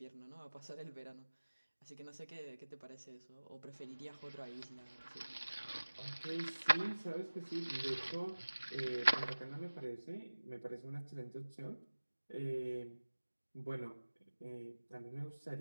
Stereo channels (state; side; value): inverted; both; correlation -1.00